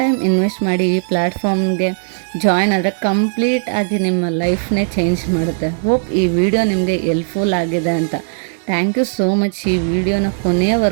ಟೈಮ್ ಇನ್ವೆಸ್ಟ್ ಮಾಡಿ ಈ ಪ್ಲ್ಯಾಟ್ಫಾರ್ಮ್ಗೆ ಜಾಯಿನ್ ಆದರೆ ಕಂಪ್ಲೀಟ್ ಆಗಿ ನಿಮ್ಮ ಲೈಫ್ನೇ ಚೇಂಜ್ ಮಾಡುತ್ತೆ. ಹೋಪ್ ಈ ವಿಡಿಯೋ ನಿಮಗೆ ಹೆಲ್ಪ್ಫುಲ್ ಆಗಿದೆ ಅಂತ. ಥ್ಯಾಂಕ್ ಯು ಸೋ ಮಚ್ ಈ ವಿಡಿಯೋನ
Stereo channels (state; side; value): silent; left; digital silence